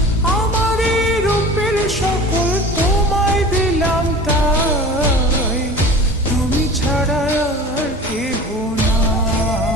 আমার এই রূপের সকল তোমায় দিলাম তাই, তুমি ছাড়া আর কেহ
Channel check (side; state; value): both; normal; correlation 0.39